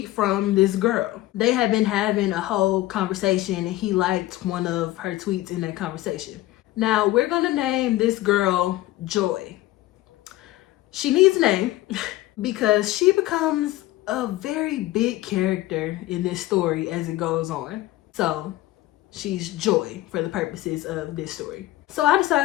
from this girl. They had been having a whole conversation and he liked one of her tweets in that conversation. Now we're gonna name this girl Joy. She needs a name because she becomes a very big character in this story as it goes on. So she's Joy for the purposes of this story. So I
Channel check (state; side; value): quieter; right; 16.6 dB